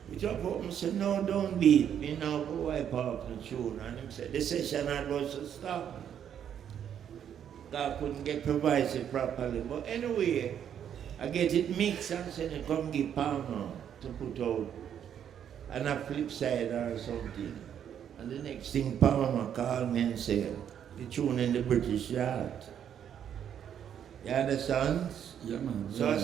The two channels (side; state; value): left; quieter; 9.1 dB